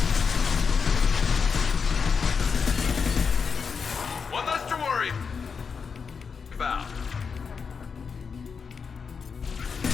One less to worry about.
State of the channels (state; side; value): quieter; right; 5.7 dB